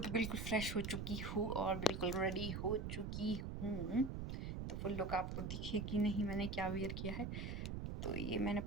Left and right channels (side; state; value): right; noise; rumble, 4 dB below the sound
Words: बिल्कुल फ्रेश हो चुकी हूँ और बिल्कुल रेडी हो चुकी हूँ। तो फुल लुक आपको दिखेगी नहीं मैंने क्या वेयर किया है। तो ये मैंने